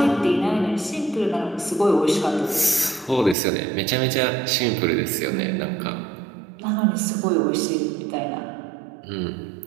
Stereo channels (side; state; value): left; drops out; at 3.4 s